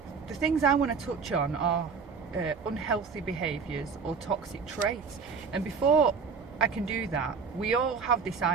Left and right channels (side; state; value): left; quieter; 5.5 dB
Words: the things I want to touch on are unhealthy behaviours or toxic traits. And before I can do that, we all have this